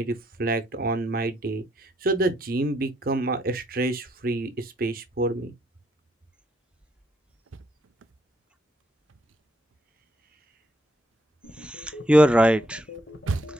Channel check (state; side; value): normal; both; correlation 0.73